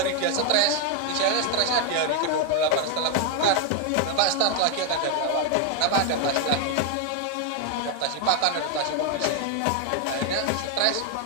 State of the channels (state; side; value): different; both; correlation 0.01